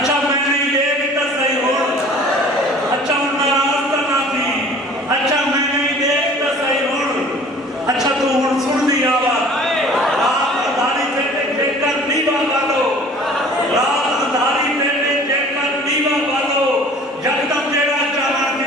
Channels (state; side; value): normal; both; correlation 0.48